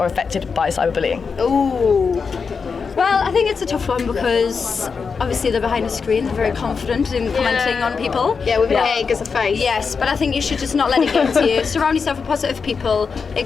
affected by cyberbullying? Ooh. Well, I think it's a tough one because obviously they're behind a screen, they're very confident in commenting on people. Yeah, with an egg as a face. Yes, but I think you should just not let it get to you. Surround yourself with positive people.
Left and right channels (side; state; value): right; quieter; 5.4 dB